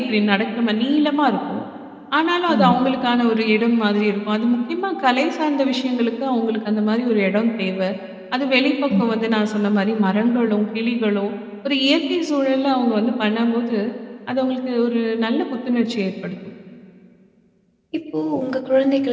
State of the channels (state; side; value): identical; both; correlation 1.00